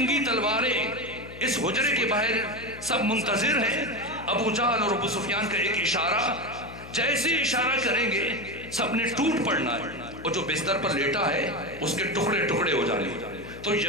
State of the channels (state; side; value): noise; left; hum, 15 dB below the sound